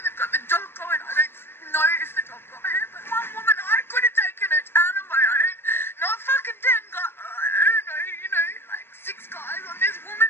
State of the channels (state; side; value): late; right; 0.11 ms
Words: They've got the dog going. I don't know if the dog got her, but one woman, I could have taken her down on my own. Not fucking 10 guys, I don't know, like 6 guys on this woman